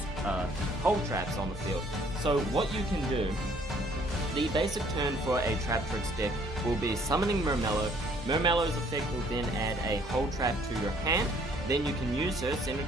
hold traps on the field. So, what you can do, the basic turn for a Traptrix deck will be summoning Murmello. Murmello's effect will then add a hold trap to your hand. Then you can use her, send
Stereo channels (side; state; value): both; normal; correlation 0.61